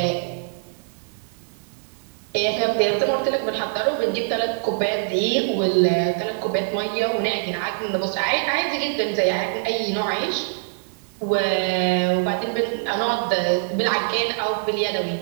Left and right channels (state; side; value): silent; left; digital silence